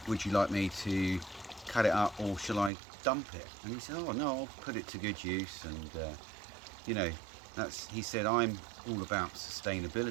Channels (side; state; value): left; drops out; at 2.7 s